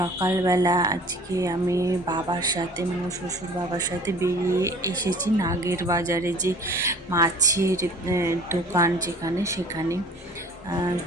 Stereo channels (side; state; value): both; normal; correlation 0.47